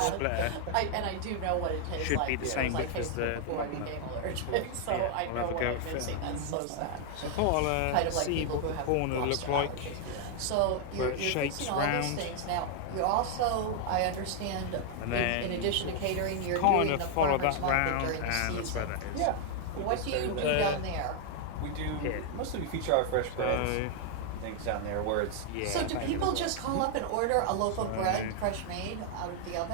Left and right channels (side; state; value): both; different; correlation 0.00